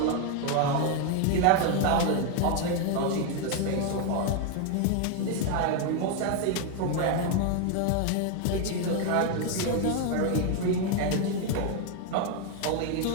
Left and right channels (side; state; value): both; different; correlation 0.01